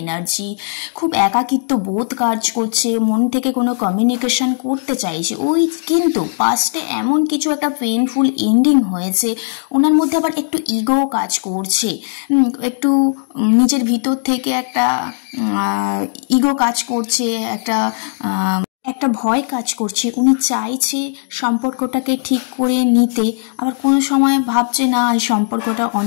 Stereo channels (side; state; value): right; silent; digital silence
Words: খুব একাকিত্ব বোধ কাজ করছে, মন থেকে কোনো কমিউনিকেশন করতে চাইছে ওই, কিন্তু পাস্টে এমন কিছু একটা পেইনফুল এন্ডিং হয়েছে, ওনার মধ্যে আবার একটু ইগো কাজ করছে, একটু নিজের ভিতর থেকে একটা ইগো কাজ করছে, একটা ভয় কাজ করছে। উনি চাইছে সম্পর্কটাকে ঠিক করে নিতে, আবার কোনো সময় ভাবছে না এই সম্পর্কটা